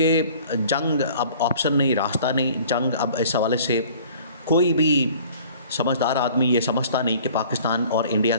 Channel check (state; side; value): inverted; both; correlation -0.50